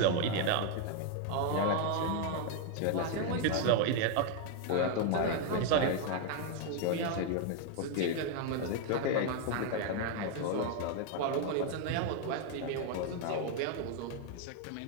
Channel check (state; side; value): different; both; correlation 0.01